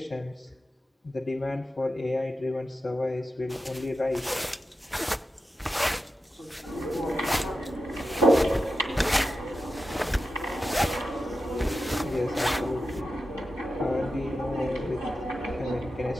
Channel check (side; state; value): both; normal; correlation 0.91